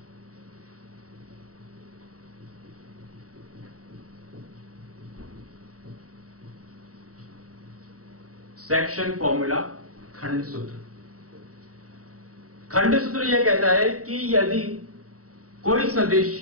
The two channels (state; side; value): late; left; 0.66 ms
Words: सेक्शन फॉर्मूला खंड सूत्र। खंड सूत्र यह कहता है कि यदि कोई सदिश